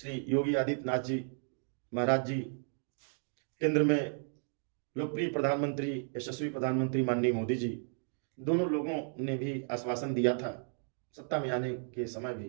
योगी आदित्यनाथ जी महाराज जी केंद्र में लोकप्रिय प्रधानमंत्री, यशस्वी प्रधानमंत्री माननीय मोदी जी, दोनों लोगों ने भी आश्वासन दिया था सत्ता में आने के समय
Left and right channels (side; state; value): left; silent; 55 dB below the other